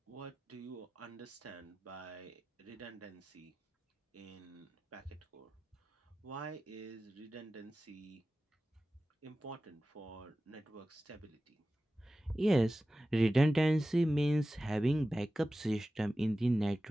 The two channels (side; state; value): both; normal; correlation 0.95